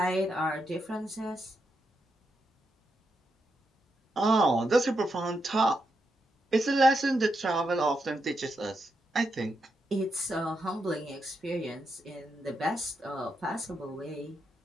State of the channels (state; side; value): normal; both; correlation 0.83